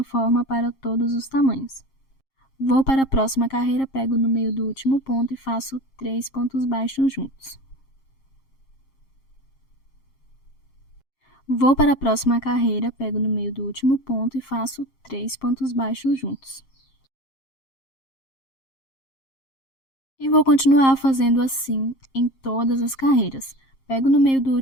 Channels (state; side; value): late; right; 7.5 ms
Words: forma para todos os tamanhos. Vou para a próxima carreira, pego no meio do último ponto e faço 3 pontos baixos juntos. Vou para a próxima carreira, pego no meio do último ponto e faço 3 pontos baixos juntos. E vou continuar fazendo assim em todas as carreiras. Pego no meio do